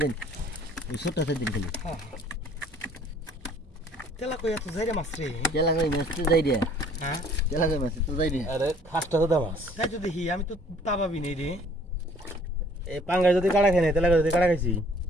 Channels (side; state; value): both; normal; correlation 0.57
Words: দিন ওই ছোটটা দিন খালি তেলা কই এত যাইরে মাছ রে তেলা কই মাছ তো যাই রে হ্যাঁ তেলা কই মাছ তো যাই রে আরে খাসটা তো দামাস তাই তো দেখি আমি তো তা ভাবি নেই রে এই পাঙ্গায় যদি কাটা খাই না তেলা যদি কাটা খাইছি